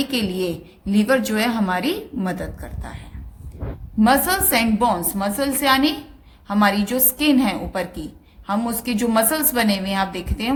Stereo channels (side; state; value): both; identical; correlation 1.00